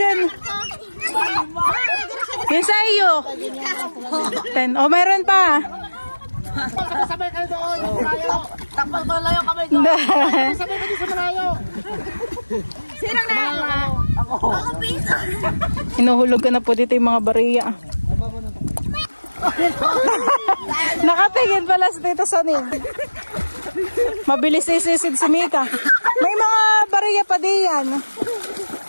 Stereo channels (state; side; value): inverted; both; correlation -1.00